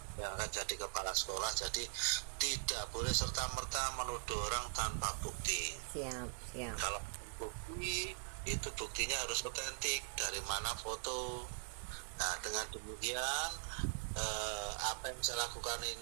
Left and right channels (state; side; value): silent; left; digital silence